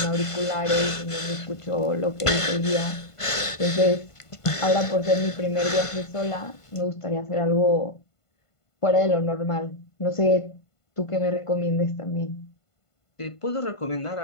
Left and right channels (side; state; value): right; late; 1.5 ms